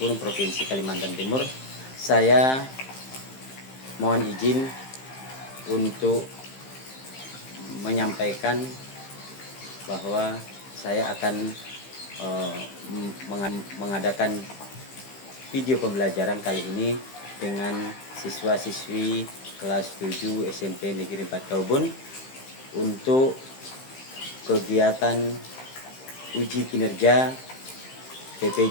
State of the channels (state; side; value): late; right; 15 ms